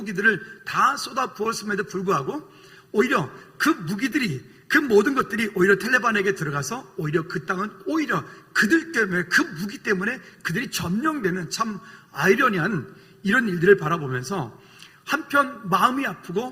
다 쏟아 부었음에도 불구하고 오히려 그 무기들이, 그 모든 것들이 오히려 탈레반에게 들어가서 오히려 그 땅은 오히려 그들 때문에, 그 무기 때문에 그들이 점령되는 참 아이러니한 이런 일들을 바라보면서 한편 마음이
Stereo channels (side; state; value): both; identical; correlation 1.00